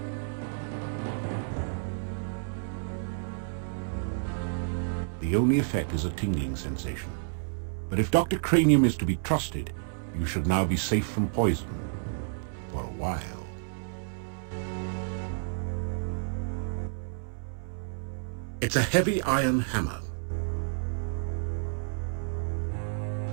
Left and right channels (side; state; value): left; silent; 58 dB below the other